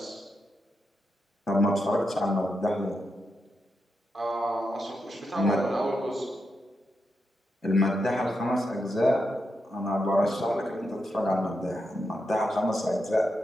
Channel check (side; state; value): both; normal; correlation 0.85